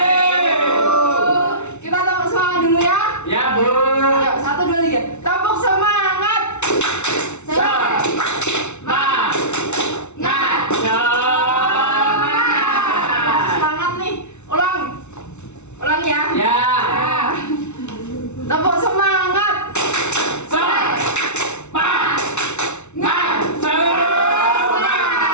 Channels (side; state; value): right; late; 0.82 ms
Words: Kita tepuk semangat dulu ya. Ya Bu. Ayo, 1, 2, 3. Tepuk semangat. Semangat. Semangat nih. Ulang. Ulang ya. Ya. Tepuk semangat. Semangat.